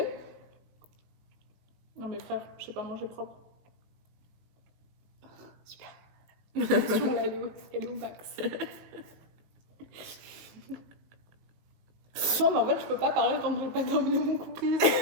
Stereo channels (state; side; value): late; left; 18 ms